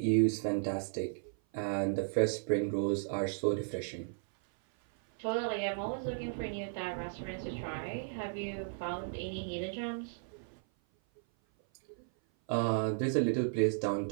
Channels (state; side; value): silent; left; 55 dB below the other